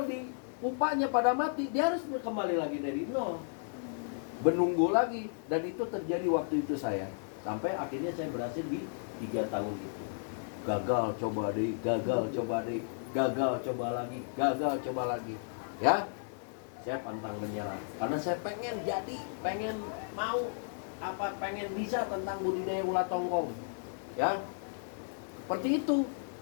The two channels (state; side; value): silent; right; digital silence